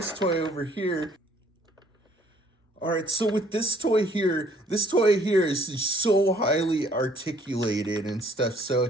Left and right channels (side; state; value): both; normal; correlation 0.61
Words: toy over here. All right, so with this toy here is so highly articulated and stuff.